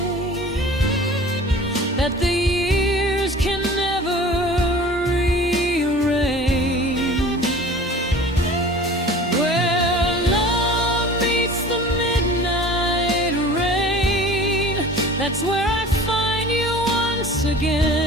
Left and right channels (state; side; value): normal; both; correlation 0.42